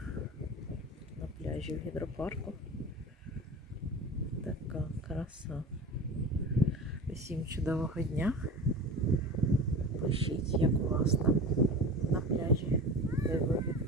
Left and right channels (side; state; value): both; normal; correlation 0.32